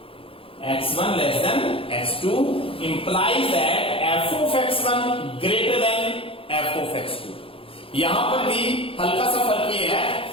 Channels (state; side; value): late; right; 0.27 ms